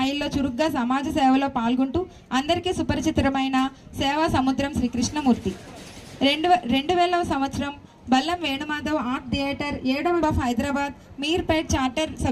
చురుగ్గా సమాజ సేవలో పాల్గొంటూ అందరికీ సుపరిచితమైన సేవా సముద్రం శ్రీ కృష్ణమూర్తి. 2000వ సంవత్సరం బల్లం వేణుమాధవ్ ఆర్ట్ థియేటర్ 7వ హైదరాబాద్ మీర్పేట్ చార్టర్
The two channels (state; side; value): identical; both; correlation 1.00